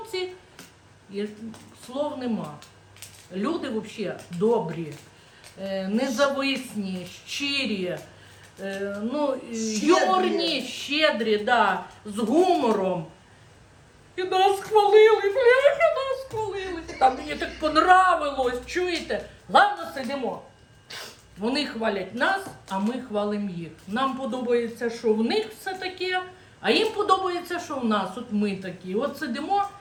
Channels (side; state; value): both; identical; correlation 1.00